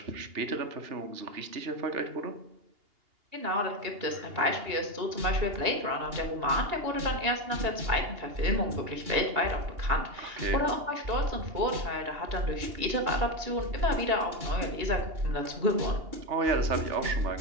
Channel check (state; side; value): late; left; 2.8 ms